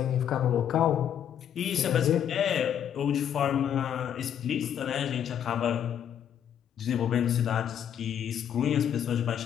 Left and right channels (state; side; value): quieter; right; 9.3 dB